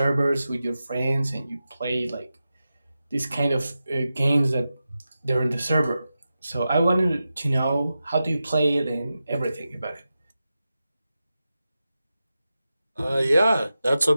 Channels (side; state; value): both; inverted; correlation -0.92